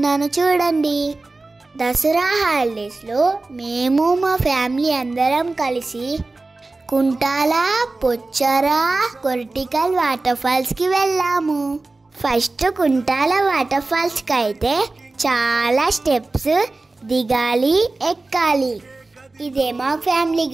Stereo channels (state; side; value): quieter; left; 3.3 dB